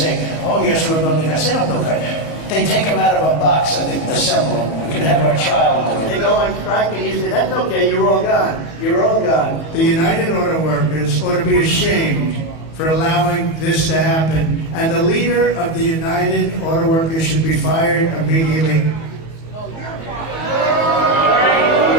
oh, yes, we're building guys. They don't build guys. They take them out of a box and they assemble them. We could have our child do it. They go on strike and you say, that's okay, you're all gone. You're all gone. The United Auto Workers ought to be ashamed for allowing this to happen. And the leader of the United Auto Workers should be fired immediately.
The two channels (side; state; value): right; late; 19 ms